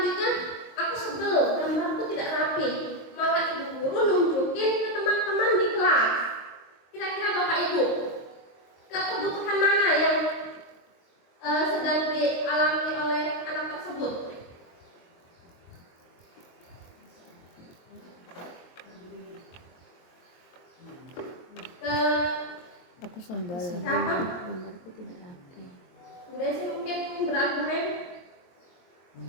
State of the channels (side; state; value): right; late; 23 ms